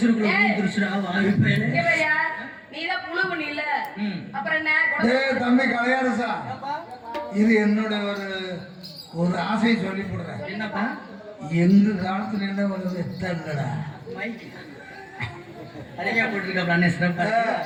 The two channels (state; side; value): identical; both; correlation 1.00